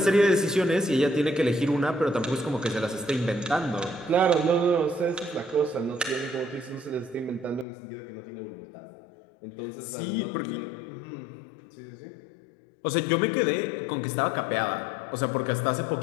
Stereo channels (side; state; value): right; drops out; at 7.7 s